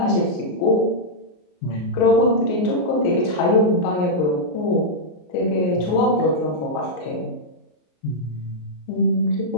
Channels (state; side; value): late; right; 33 ms